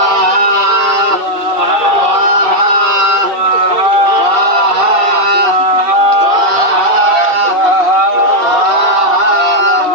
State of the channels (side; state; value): left; late; 2.6 ms